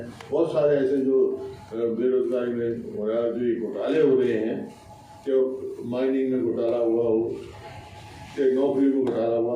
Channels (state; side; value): identical; both; correlation 1.00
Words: बहुत सारे ऐसे जो बेरोजगारी में हो रहा है, जो ये घोटाले हो रहे हैं, कि माइनिंग में घोटाला हुआ हो, कि नौकरी में घोटाला